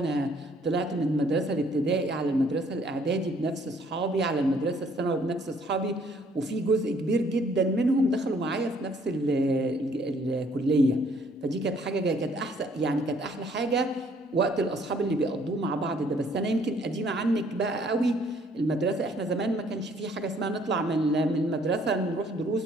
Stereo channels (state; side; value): normal; both; correlation 0.62